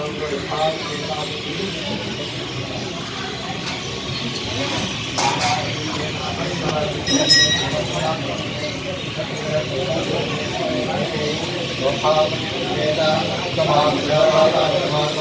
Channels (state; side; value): identical; both; correlation 1.00